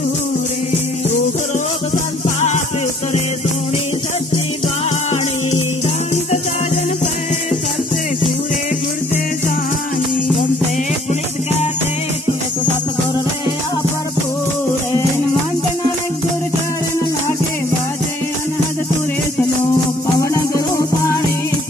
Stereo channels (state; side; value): normal; both; correlation 0.59